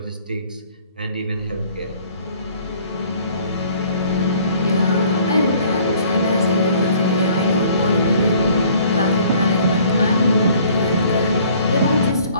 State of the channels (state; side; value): inverted; both; correlation -0.56